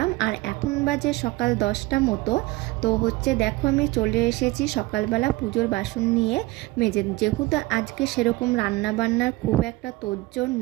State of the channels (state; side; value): quieter; left; 20.6 dB